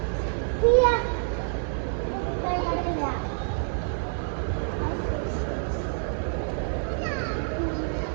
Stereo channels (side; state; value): left; silent; 60 dB below the other